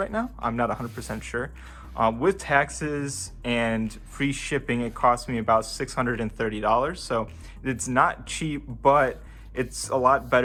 now. I'm not 100% sure. With taxes and free shipping, it cost me about $630. So it's not cheap, but it's a lot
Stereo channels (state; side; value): identical; both; correlation 1.00